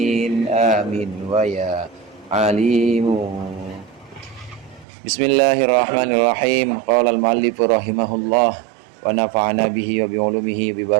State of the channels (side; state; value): left; drops out; at 4.9 s